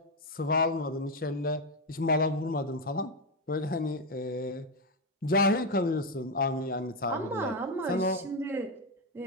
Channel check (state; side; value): normal; both; correlation 0.08